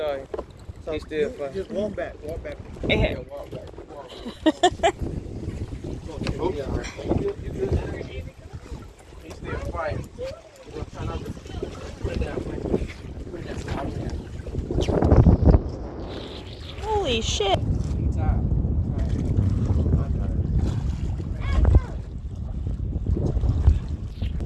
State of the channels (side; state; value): both; identical; correlation 1.00